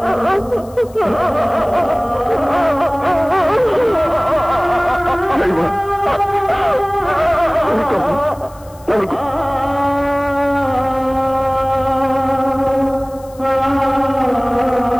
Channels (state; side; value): noise; left; hiss, 26 dB below the sound